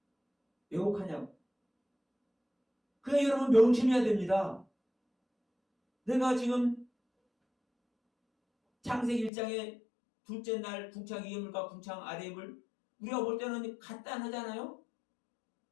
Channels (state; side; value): drops out; right; at 9.3 s